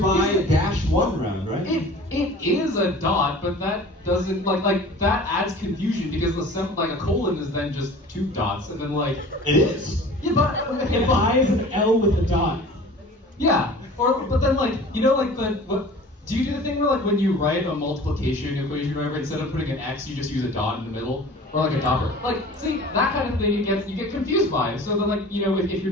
-1 round, right? It is a dot, but that doesn't like that adds confusion because a colon is then just 2 dots, and then like It is. yeah, but okay, I is an L with a dot. yeah, but then like what? Do you do the thing where like when you write a multiplication equation, whatever, instead of putting an X, you just use a dot in the middle, or like a dopper? Like, see, that kind of thing you get confused by. So then like if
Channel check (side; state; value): both; normal; correlation 0.43